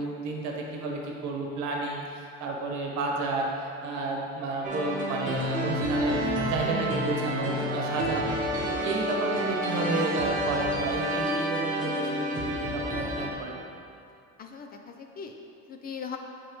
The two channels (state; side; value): normal; both; correlation 0.27